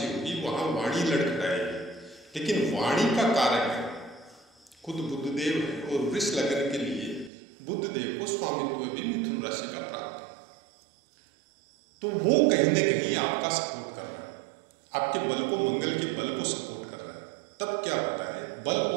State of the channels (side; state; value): left; drops out; at 7.3 s